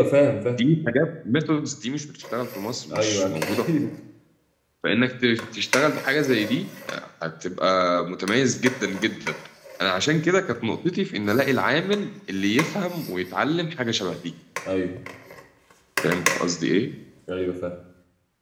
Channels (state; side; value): identical; both; correlation 1.00